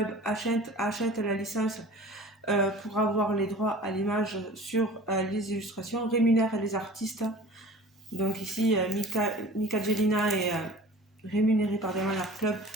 achète la licence pour avoir les droits à l'image sur les illustrations, rémunère les artistes. Donc ici, Mika Jelina est rémunérée par Diamond Art Club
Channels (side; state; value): both; normal; correlation 0.42